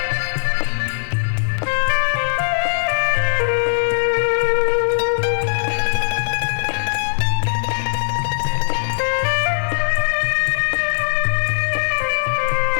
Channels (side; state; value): right; silent; 66 dB below the other